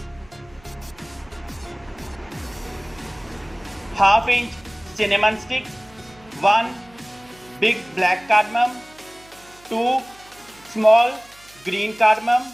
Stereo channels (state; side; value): noise; right; hum, 27 dB below the sound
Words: half inch cinnamon stick, 1 big black cardamom, 2 small green cardamom,